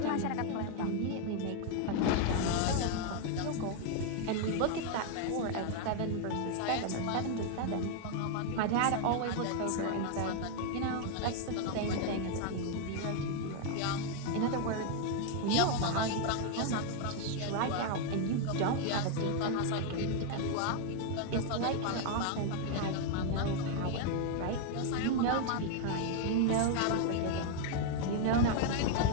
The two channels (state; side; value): different; both; correlation 0.00